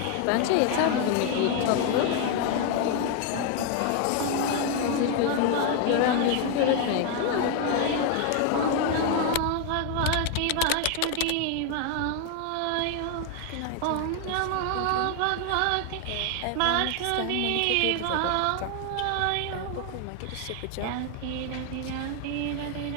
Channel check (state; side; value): different; both; correlation 0.01